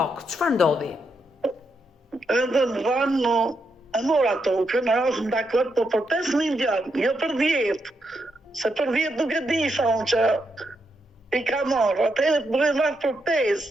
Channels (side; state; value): both; normal; correlation 0.81